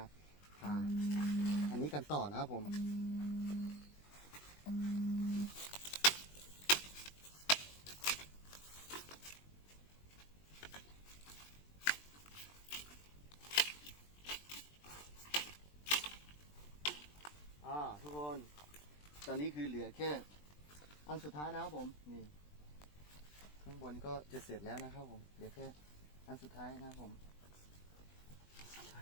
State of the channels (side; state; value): right; late; 20 ms